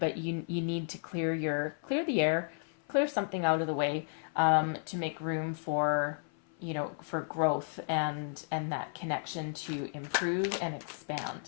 you need to clear the air, clear something out of the way to make room for for growth and that connection to improve and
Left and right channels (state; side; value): silent; right; 56 dB below the other